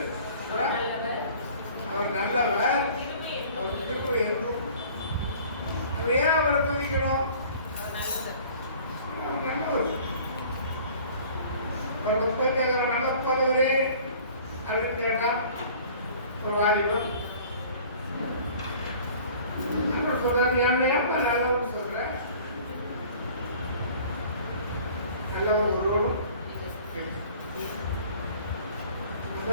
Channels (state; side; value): inverted; both; correlation -0.49